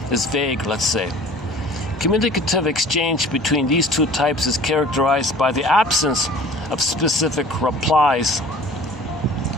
is vague, let's say. Communicative exchange between these two types is characterized by the absence of specific replies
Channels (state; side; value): normal; both; correlation 0.46